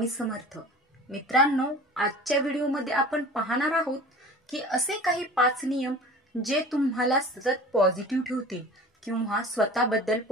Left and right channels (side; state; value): both; normal; correlation 0.40